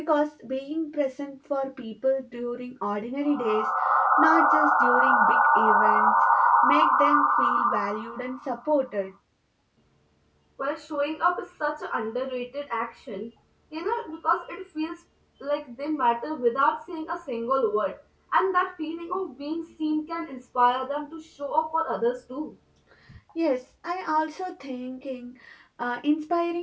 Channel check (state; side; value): identical; both; correlation 1.00